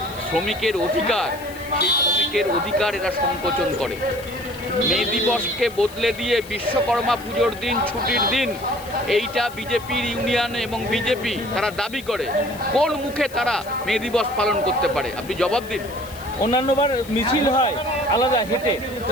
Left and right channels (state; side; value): noise; left; hiss, 19 dB below the sound